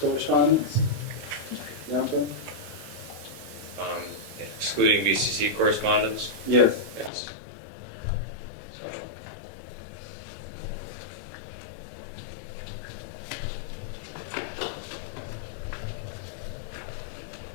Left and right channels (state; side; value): drops out; right; at 7.1 s